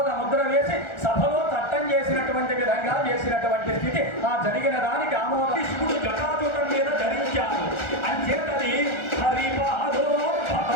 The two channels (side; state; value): right; late; 1.4 ms